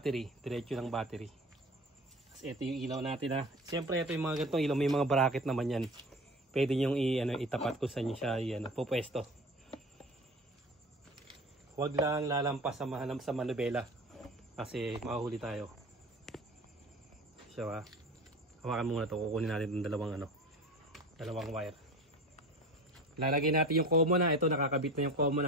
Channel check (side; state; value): both; normal; correlation 0.36